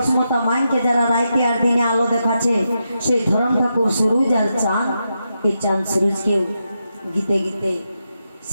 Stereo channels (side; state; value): both; inverted; correlation -0.86